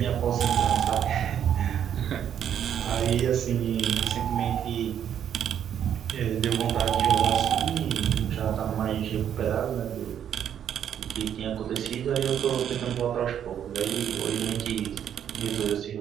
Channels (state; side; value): quieter; left; 9.4 dB